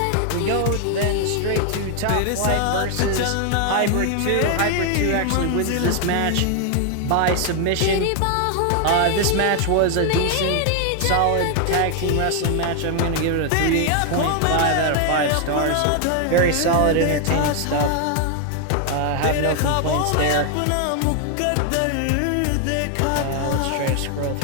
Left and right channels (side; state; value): both; different; correlation 0.00